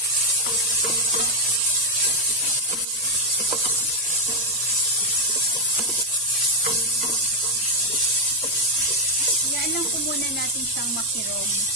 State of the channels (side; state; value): both; normal; correlation 0.02